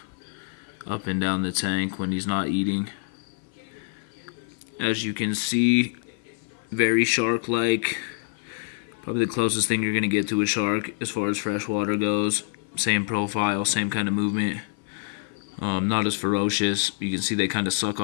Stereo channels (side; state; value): right; silent; 55 dB below the other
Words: up and down the tank when he's not eating. As you can see, very shark-like. Probably the closest thing you're going to get to a shark as far as freshwater goes. Same profile, same kind of movement. Not as ferocious. You can see they kind of suck